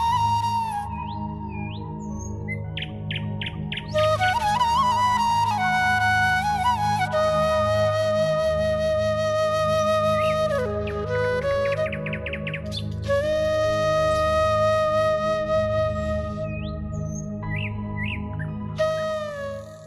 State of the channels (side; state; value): both; identical; correlation 1.00